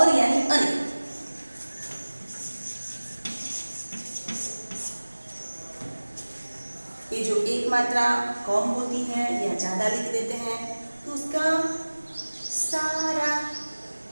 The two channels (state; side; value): inverted; both; correlation -1.00